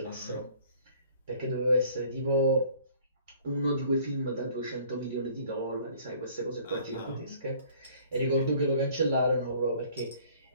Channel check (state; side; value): inverted; both; correlation -0.55